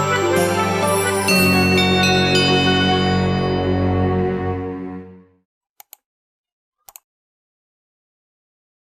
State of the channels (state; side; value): identical; both; correlation 1.00